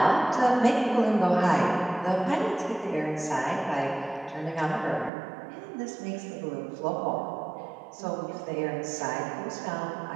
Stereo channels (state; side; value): drops out; left; at 5.1 s